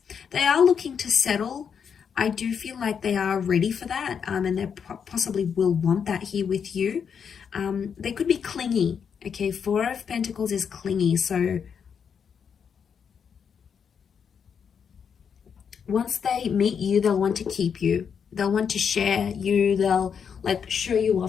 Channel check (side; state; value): right; quieter; 7.0 dB